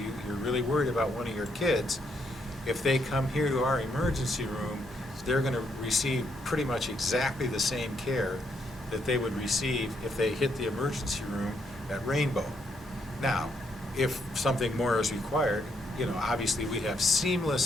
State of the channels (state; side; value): normal; both; correlation 0.75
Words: really worried about one of your kids, if they come here to our emergency room, they're going to receive pretty much exactly the same care that they would receive if they hit the emergency room at Rainbow. Now, if something more is required, obviously we have